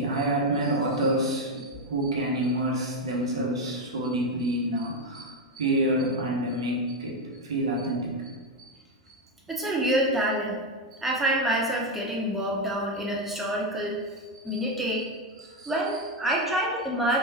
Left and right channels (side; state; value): both; normal; correlation 0.07